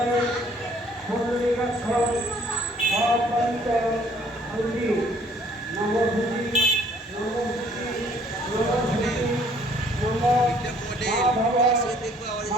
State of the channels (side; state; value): both; normal; correlation 0.60